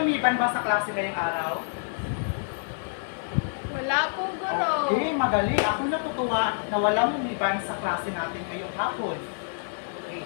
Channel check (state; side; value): silent; right; digital silence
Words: lumiban ba sa klase ngayong araw? Wala po, Guro. Okay, magaling. Ako natutuwa na walang lumiban sa klase natin ngayong hapon. Okay.